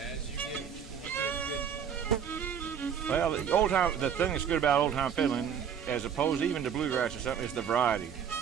Well, the thing that's good about old-time fiddling, as opposed even to bluegrass or something, is the variety.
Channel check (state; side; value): quieter; left; 7.9 dB